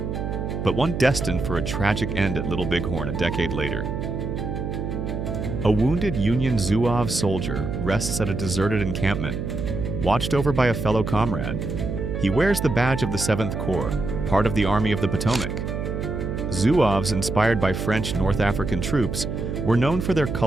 but one destined for a tragic end at Little Bighorn a decade later. A wounded Union Zouave soldier rests at a deserted encampment, watched over by a fellow comrade. He wears the badge of the 7th Corps, part of the Army of the Potomac. Zouaves, inspired by French North African troops, were known for their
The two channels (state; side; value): noise; right; hum, 4 dB below the sound